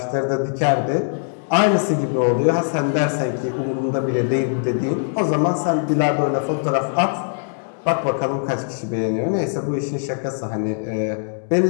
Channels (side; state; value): right; silent; digital silence